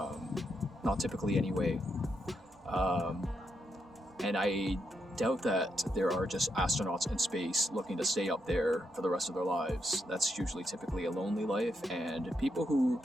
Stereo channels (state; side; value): normal; both; correlation 0.81